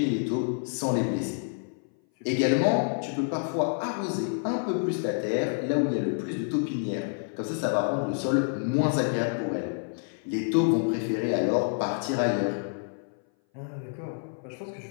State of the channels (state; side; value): silent; right; 57 dB below the other